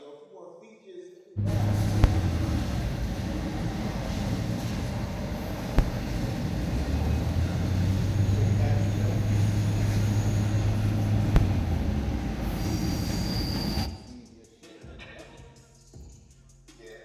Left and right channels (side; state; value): both; identical; correlation 1.00